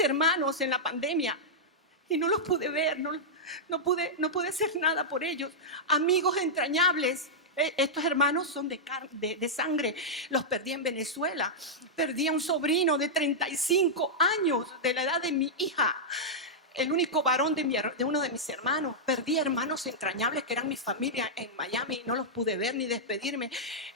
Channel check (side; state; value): both; normal; correlation -0.09